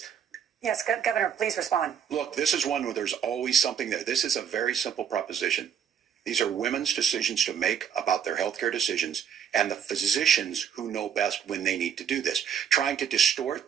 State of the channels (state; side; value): quieter; left; 8.3 dB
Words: Yes, Governor, please respond. Look, this is one where there's always something there. This is a very simple proposition. These are women's decisions to make about their healthcare decisions, and the physicians who know best when they need to do this. Trying to